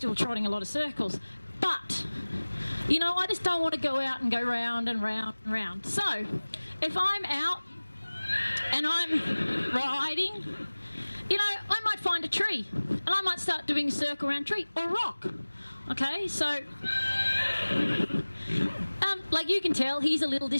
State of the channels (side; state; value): both; inverted; correlation -1.00